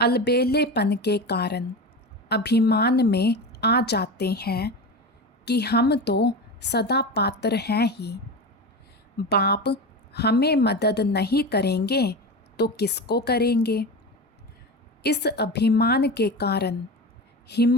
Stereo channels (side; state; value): both; normal; correlation 0.24